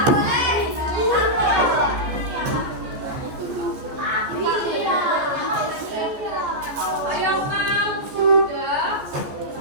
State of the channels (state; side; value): late; left; 14 ms